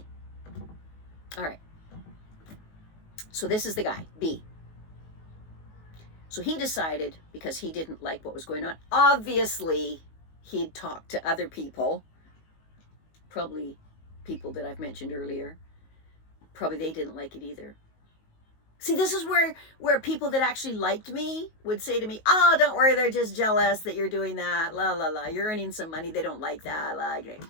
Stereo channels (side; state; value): right; late; 19 ms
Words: All right. So this is the guy, B. So he decided, because he didn't like what was going on, obviously he'd talked to other people, probably people that I've mentioned earlier. Probably they didn't like it either. See, this is where people that actually liked me would say to me, oh, don't worry, they're just jealous that you're doing that, la, la, la, you're earning some money, they don't like that, la, you